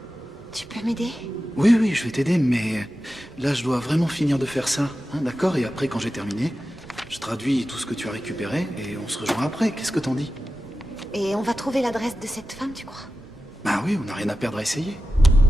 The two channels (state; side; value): normal; both; correlation 0.93